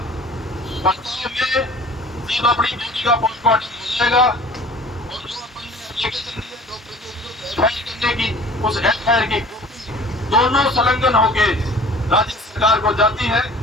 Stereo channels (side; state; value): both; normal; correlation 0.46